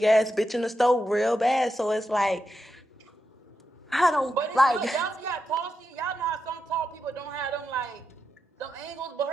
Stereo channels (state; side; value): normal; both; correlation 0.87